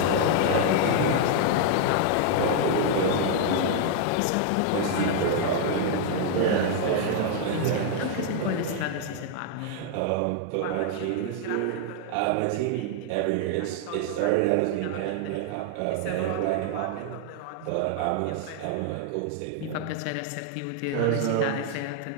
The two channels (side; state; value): both; different; correlation 0.00